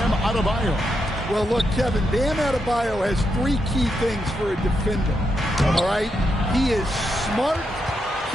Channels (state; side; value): normal; both; correlation 0.83